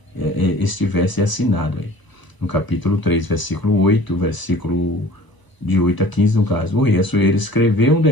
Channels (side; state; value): right; late; 1.0 ms